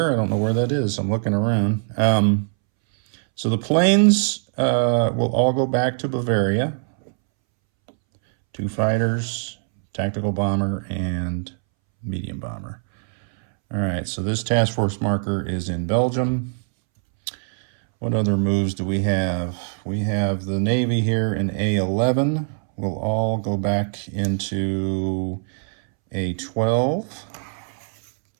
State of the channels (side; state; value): left; silent; 64 dB below the other